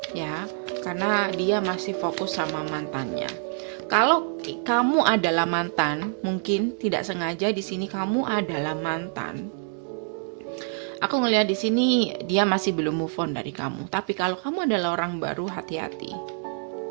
ya, karena dia masih fokus sama mantannya. Kalau kamu adalah mantan, mungkin tidak sengaja di sini kamu adalah mantan. Aku ngelihat di sini dia masih belum move on dari kamu. Tapi kalau kamu adalah orang baru, hati-hati,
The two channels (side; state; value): left; silent; 57 dB below the other